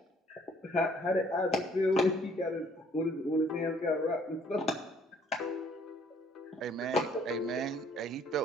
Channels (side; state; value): both; normal; correlation 0.61